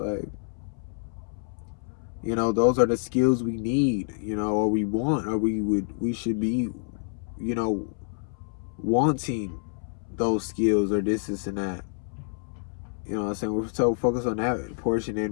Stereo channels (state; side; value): silent; right; 60 dB below the other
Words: you know, those are the skills we need, you know, or we want, or we should be, you know, wanting those skills or this and that. You know what I'm saying? We're so focused on that portion,